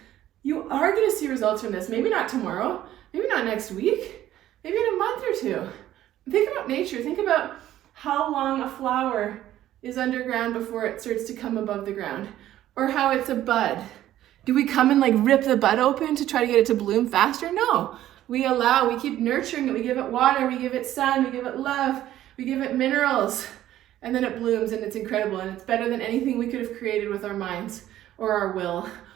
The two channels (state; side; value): quieter; left; 13.1 dB